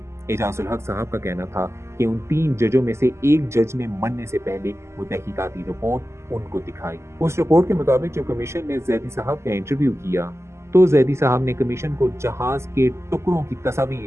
اعجاز الحق صاحب کا کہنا تھا کہ ان 3 ججوں میں سے ایک جج نے مرنے سے پہلے وہ تحقیقاتی رپورٹ ان کو دکھائی۔ اس رپورٹ کے مطابق جب کمیشن نے زیدی صاحب کا انٹرویو کیا تو زیدی صاحب نے کمیشن کو جہاز کے ٹکڑوں کی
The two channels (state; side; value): late; left; 0.13 ms